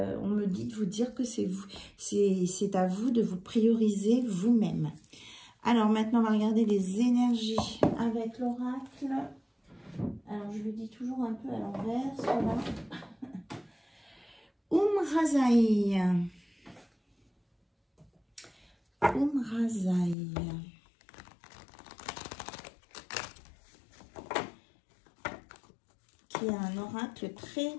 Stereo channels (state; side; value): drops out; right; at 20.2 s